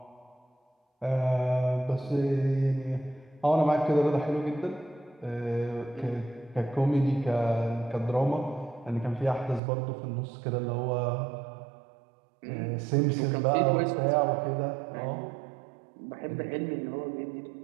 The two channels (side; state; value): left; drops out; at 9.6 s